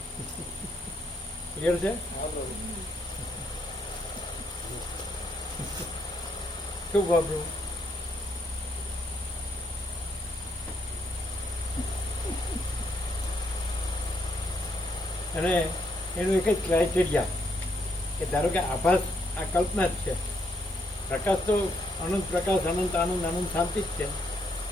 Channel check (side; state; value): both; normal; correlation 0.75